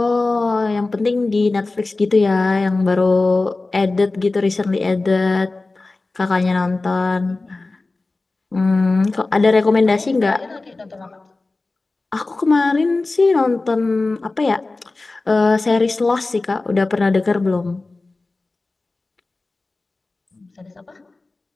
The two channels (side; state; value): right; quieter; 3.3 dB